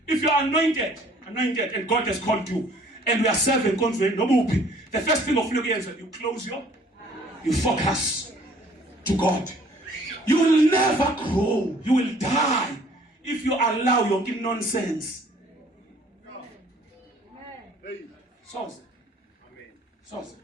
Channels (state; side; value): normal; both; correlation 0.56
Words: If you are anointed, and God has called you, and we are serving konzweni nobuphi, the first thing of you close you focus to God. You will never grow. You will die if you allow your nonsense.